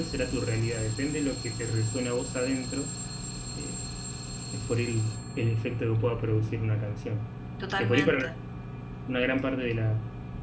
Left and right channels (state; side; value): identical; both; correlation 1.00